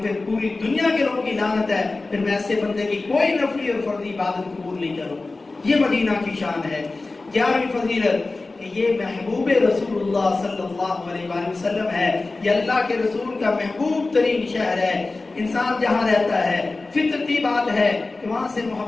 پھر پوری دنیا کے لوگوں کی لعنت ہے، پھر میں ایسے بندے کی کوئی نفلی اور فرضی عبادت قبول نہیں کروں۔ یہ مدینہ کی شان ہے۔ 11ویں فضیلت کہ یہ محبوب رسول اللہ صلی اللہ علیہ وآلہ وسلم ہے، یہ اللہ کے رسول کا محبوب ترین شہر ہے۔ انسان جہاں رہتا ہے فطرتی بات ہے کہ وہاں سے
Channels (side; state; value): right; quieter; 3.4 dB